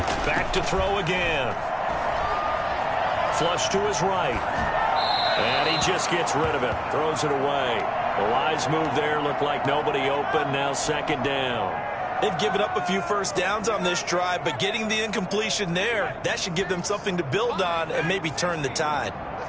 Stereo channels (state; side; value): identical; both; correlation 1.00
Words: Back to throw again. Flush to his right. And he just gets rid of it. Throws it away. The wise move there. Looked like nobody open. Now second down. They've given up a few first downs on this drive, but getting the incompletion there, that should give them something to build on and maybe turn the tide.